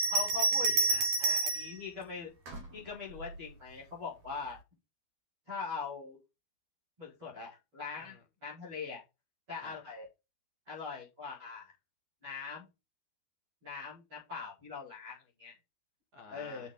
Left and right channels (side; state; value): left; late; 12 ms